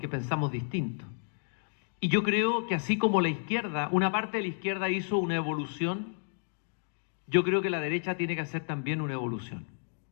pensamos distinto. Y yo creo que así como la izquierda, una parte de la izquierda hizo una evolución, yo creo que la derecha tiene que hacer también una evolución.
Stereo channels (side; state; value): right; silent; digital silence